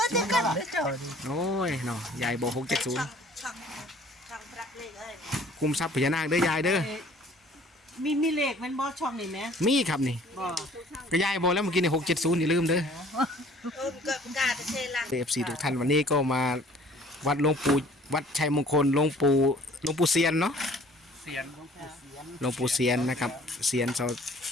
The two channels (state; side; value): normal; both; correlation 0.53